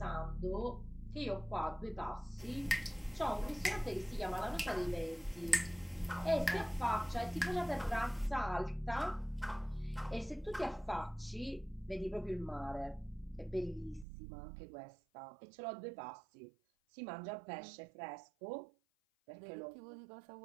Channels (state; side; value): drops out; left; at 14.1 s